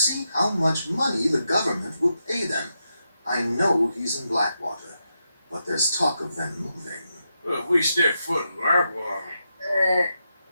how much money the government will pay them. I know he's in Blackwater, but there's talk of them moving. Well, if we step foot in Blackwater...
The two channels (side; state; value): both; inverted; correlation -0.85